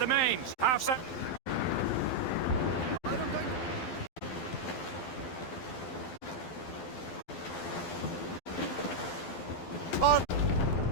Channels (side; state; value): right; late; 12 ms